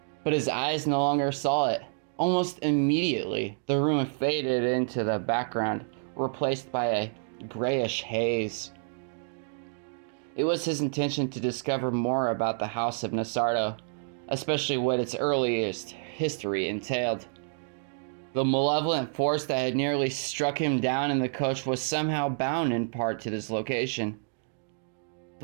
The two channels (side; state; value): left; silent; digital silence